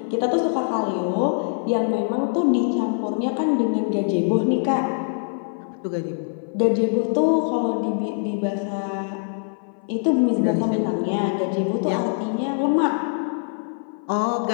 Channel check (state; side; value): silent; right; 58 dB below the other